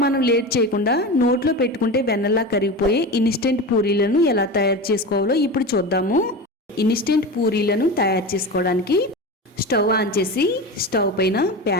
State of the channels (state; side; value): normal; both; correlation 0.26